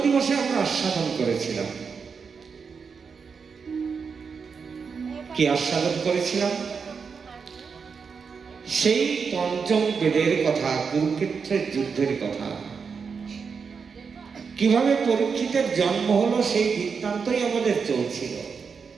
দিবসে আমরা আস্বাদন করেছিলাম। কি আস্বাদন করেছিলাম? সেই পঞ্চম বেদের কথা, কুরুক্ষেত্রের যুদ্ধের কথা, কিভাবে পরীক্ষিতের জন্ম হলো সেই বৃত্তান্তই আমাদের চলছিল।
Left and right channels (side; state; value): left; quieter; 5.7 dB